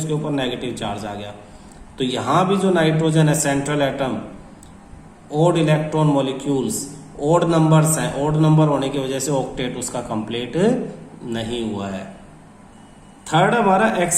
ऊपर नेगेटिव चार्ज आ गया। तो यहां भी जो नाइट्रोजन है central atom, odd electron molecules, odd numbers हैं, ओड नंबर होने की वजह से ऑक्टेट उसका कंप्लीट नहीं हुआ है। थर्ड हमारा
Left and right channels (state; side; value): identical; both; correlation 1.00